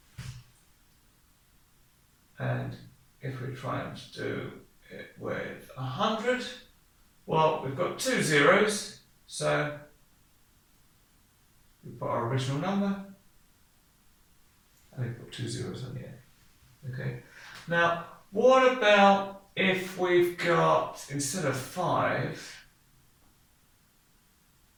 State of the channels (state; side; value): identical; both; correlation 1.00